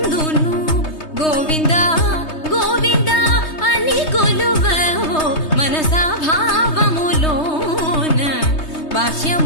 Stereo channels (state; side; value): late; right; 3.2 ms